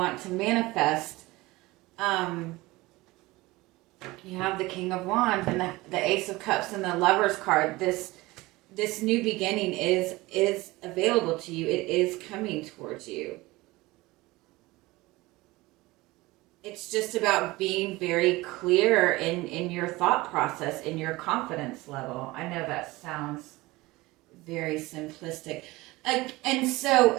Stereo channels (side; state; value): left; quieter; 20.6 dB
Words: to manifest. You have the King of Wands and the Ace of Cups and the Lover's card. This new beginning is available to you. It is coming towards you. It's just about being very clear in your thought process, in your confidence level. I know that sounds very simplistic. And so